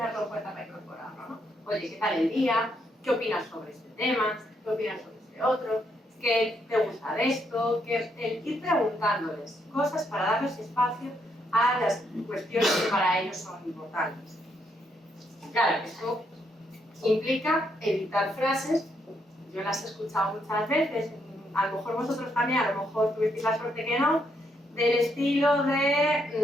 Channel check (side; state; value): both; normal; correlation 0.76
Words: en cuenta para incorporarlo, ¿no? Oye, ¿qué tal el día? ¿Qué opinas sobre este tema? ¿Qué opinas sobre este otro? ¿Qué te gusta de esto? El ir preguntándoles cosas para darles espacio a las cuestiones que para ellos son importantes. Claro, esto implica evitar frases, yo las he escuchado muchas veces, a lo mejor vosotros también, a lo mejor tuvisteis la suerte que no, del estilo